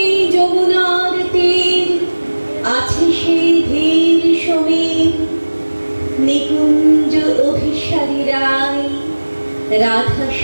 যমুনার তীর, আছে সেই ধীর সমীর, নিকুঞ্জ অভিসারী রায়, রাধার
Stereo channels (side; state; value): both; inverted; correlation -1.00